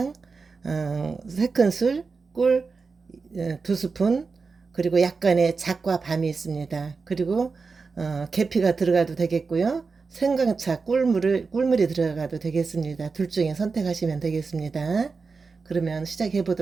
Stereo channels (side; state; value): left; quieter; 4.6 dB